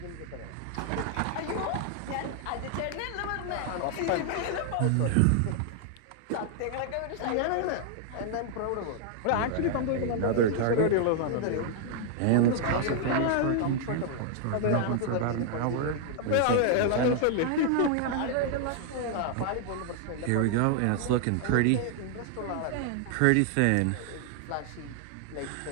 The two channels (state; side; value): different; both; correlation 0.00